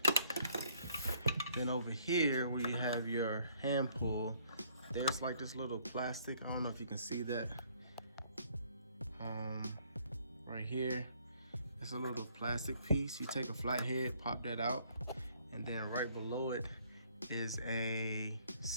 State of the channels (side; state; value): both; inverted; correlation -0.64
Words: Then over here where you have your hand pull, there's like this little plastic. I don't know if you can see that. Right here, it's a little plastic piece. You take a flathead, pop that out, and then right below it is a